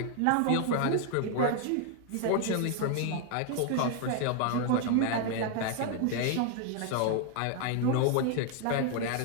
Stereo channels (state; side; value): different; both; correlation 0.00